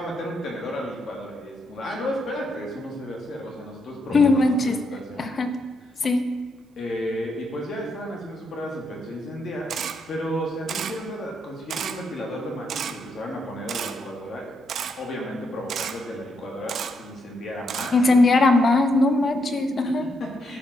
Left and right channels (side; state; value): both; normal; correlation 0.78